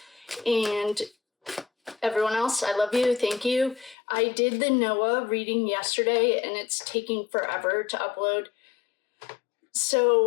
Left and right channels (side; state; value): right; drops out; at 4.0 s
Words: And everyone else, I love you. Thank you. I did the Noah reading yesterday, and it's taking forever to upload.